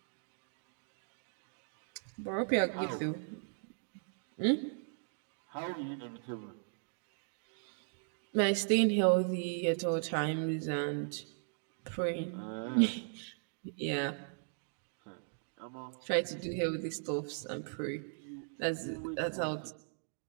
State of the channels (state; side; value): silent; left; digital silence